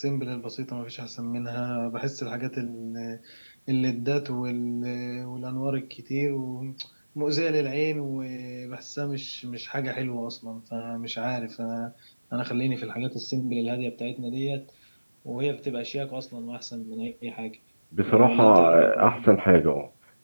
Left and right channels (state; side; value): inverted; both; correlation -1.00